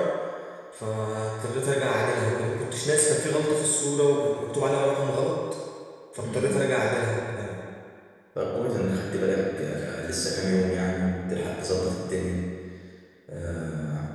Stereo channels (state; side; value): identical; both; correlation 1.00